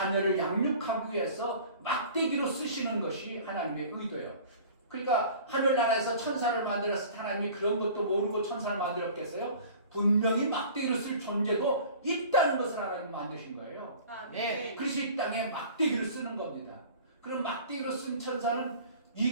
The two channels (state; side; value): inverted; both; correlation -0.44